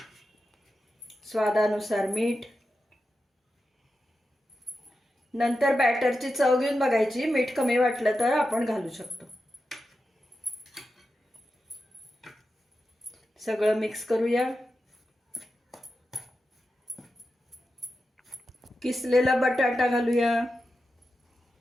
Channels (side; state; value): both; normal; correlation 0.90